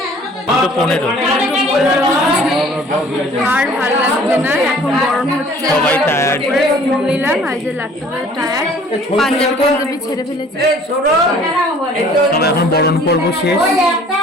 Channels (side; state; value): both; normal; correlation 0.53